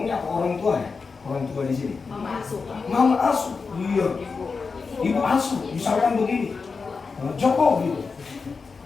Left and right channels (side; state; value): right; quieter; 4.8 dB